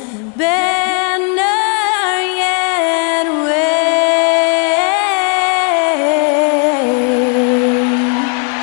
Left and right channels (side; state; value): right; quieter; 39.0 dB